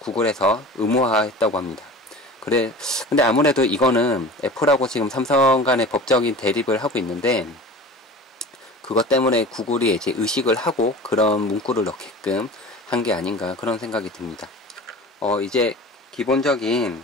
의무화했다고 합니다. 근데 아무래도 이거는 애플하고 지금 삼성 간의 법적인 대립을 하고 있는데, 그것 때문에 구글이 이제 의식을 하고 그런 문구를 넣게끔 한 게 아닌가, 그런 생각이 듭니다. 이제 기본적인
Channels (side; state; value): both; normal; correlation 0.37